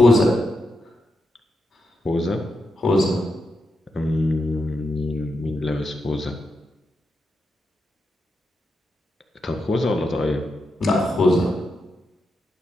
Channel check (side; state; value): both; normal; correlation 0.85